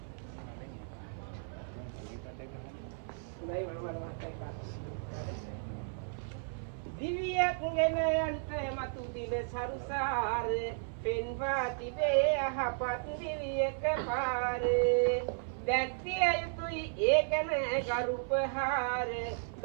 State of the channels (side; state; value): left; silent; 55 dB below the other